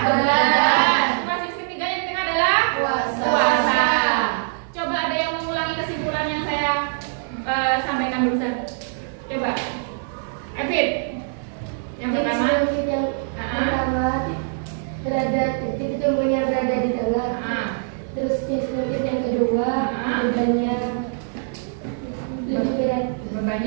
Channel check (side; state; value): left; silent; digital silence